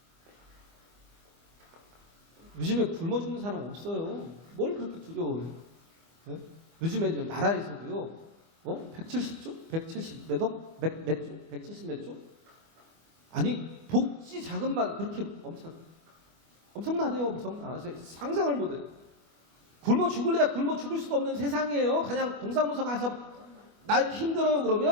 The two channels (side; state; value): left; late; 25 ms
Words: 요즘에 굶어 죽는 사람 없어요. 뭘 그렇게 두려워해요? 네? 요즘에 나라에서도요, 170조? 170 몇 억? 몇 조? 170 몇 조? 아니, 복지 자금만 그렇게 엄청나대요. 엄청나. 상상을 못해요. 굶어 죽을래야 굶어 죽을 수도 없는 세상이에요. 그냥 동사무소 가서 나 힘들어요